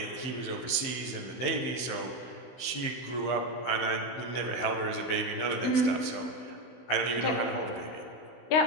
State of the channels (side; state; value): right; late; 15 ms